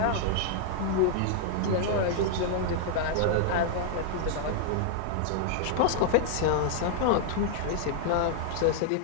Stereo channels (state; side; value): different; both; correlation -0.01